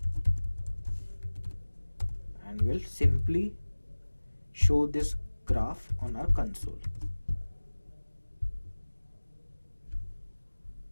and we'll simply show this graph on our console.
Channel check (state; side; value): inverted; both; correlation -1.00